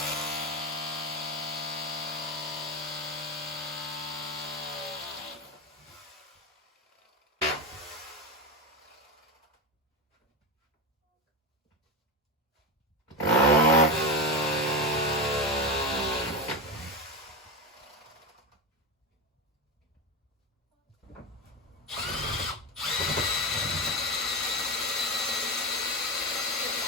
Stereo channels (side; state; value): both; normal; correlation 0.16